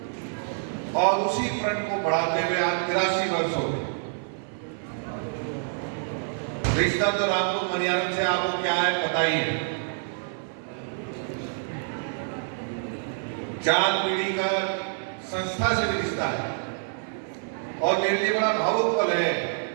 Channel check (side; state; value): left; silent; 55 dB below the other